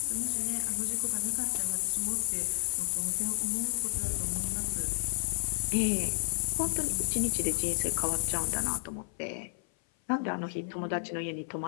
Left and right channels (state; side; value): silent; right; 55 dB below the other